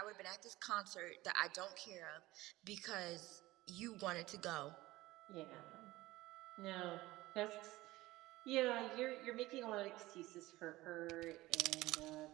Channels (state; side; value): quieter; left; 18.3 dB